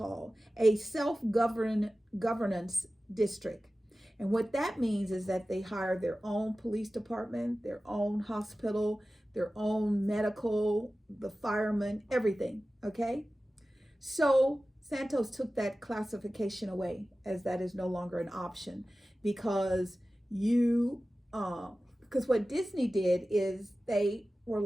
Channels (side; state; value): both; normal; correlation 0.95